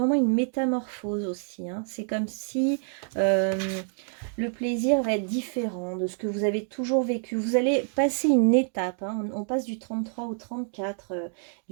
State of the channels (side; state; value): left; silent; 60 dB below the other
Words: une métamorphose aussi, hein. C'est comme si le plaisir va être différent de ce que vous avez toujours vécu. Vous allez passer une étape, hein. On passe du 33 au 34,